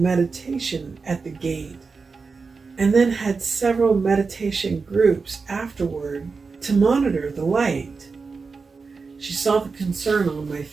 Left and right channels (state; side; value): quieter; left; 4.6 dB